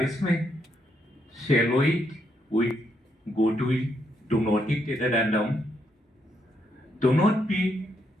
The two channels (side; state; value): both; normal; correlation 0.77